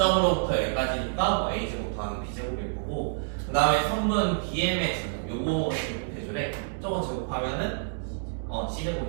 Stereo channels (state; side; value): silent; left; digital silence